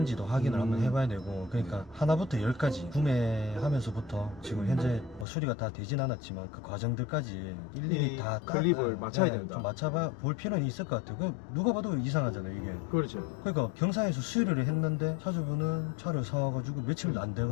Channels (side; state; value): right; drops out; at 5.2 s